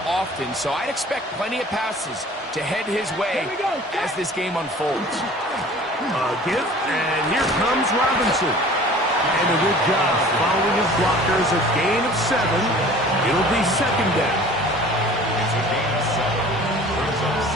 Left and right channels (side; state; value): both; normal; correlation 0.46